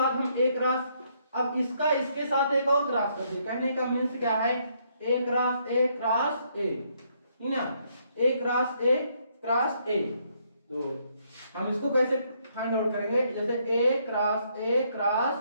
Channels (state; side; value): inverted; both; correlation -0.71